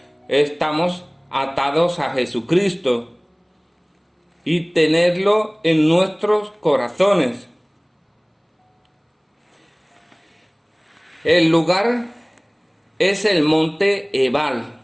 estamos atados a Jesucristo y tenerlo en nuestros corazones. El lugar es el monte Ebal.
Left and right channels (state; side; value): identical; both; correlation 1.00